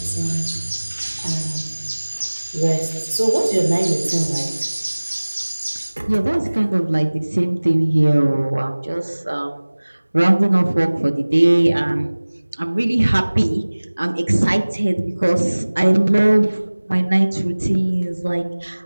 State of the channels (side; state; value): both; inverted; correlation -1.00